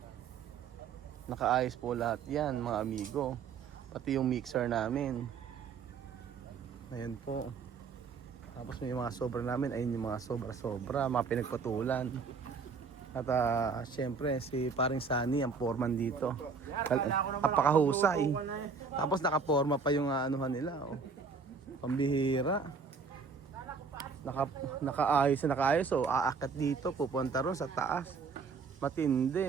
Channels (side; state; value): left; quieter; 5.2 dB